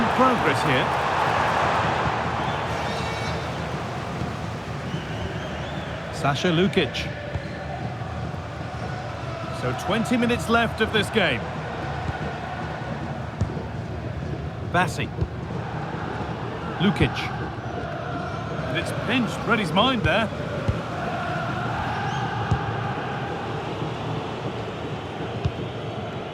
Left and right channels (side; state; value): both; identical; correlation 1.00